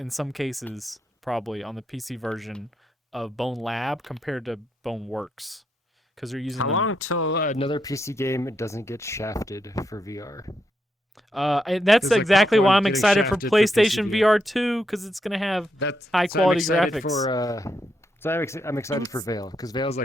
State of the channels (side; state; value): both; normal; correlation 0.81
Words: some cases, probably on the PC version of Bone Lab compared to Bone Works, because they're using How them. long till another PC game doesn't get shafted for VR? And that's 'Cause, like, exactly Pop why 1 I'm getting excited for shafted for PC PlayStation VR 2 because it's gonna have That's high so I'm quality excited graphics. So I'm excited for Veil because Veil's